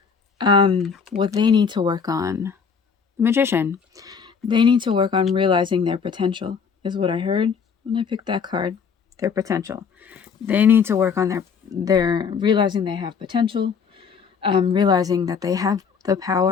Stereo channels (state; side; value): quieter; right; 6.1 dB